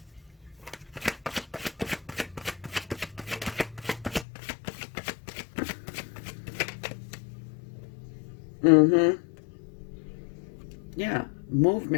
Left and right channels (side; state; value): right; drops out; at 4.2 s